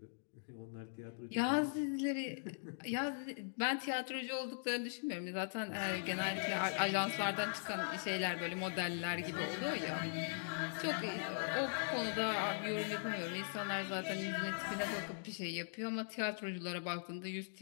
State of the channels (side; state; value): right; silent; digital silence